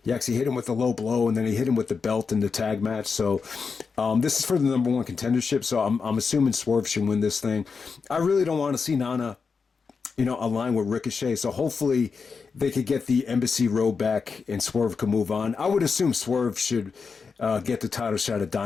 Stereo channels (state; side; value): quieter; right; 5.2 dB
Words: He actually hit him with a low blow, and then he hit him with the belt in the tag match. So this is for the number 1 contendership. So I'm assuming Swerve should win this thing. I really don't want to see Nana align with Ricochet. So hopefully they could get the Embassy Road back and Swerve can move on. I would assume Swerve should get the title shot at